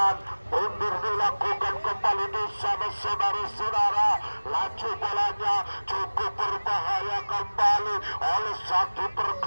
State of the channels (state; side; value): inverted; both; correlation -1.00